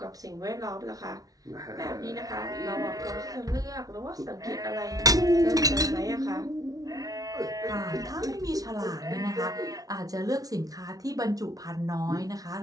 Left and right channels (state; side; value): late; left; 0.18 ms